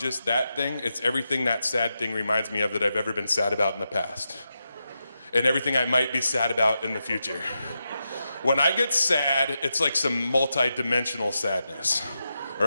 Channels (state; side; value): inverted; both; correlation -0.87